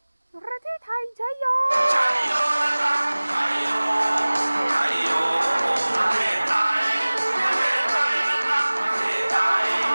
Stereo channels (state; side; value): inverted; both; correlation -1.00